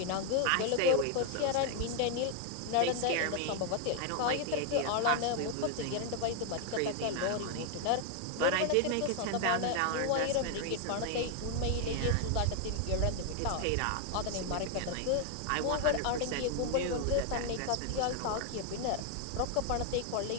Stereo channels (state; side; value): different; both; correlation 0.00